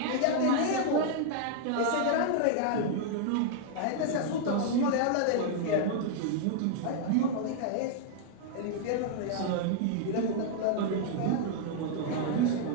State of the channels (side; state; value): both; different; correlation -0.01